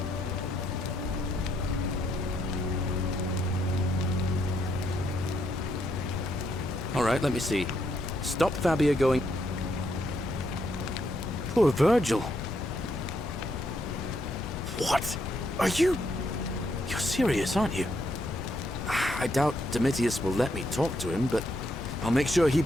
All right, let me see. Stop Fabia going... Poor Virgil. What? Are you... You're serious, aren't you? I doubt Domitius will let me talk to him, but I'll make sure he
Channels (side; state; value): both; normal; correlation 0.76